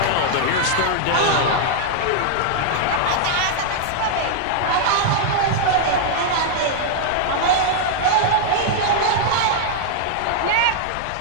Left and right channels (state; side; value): different; both; correlation -0.01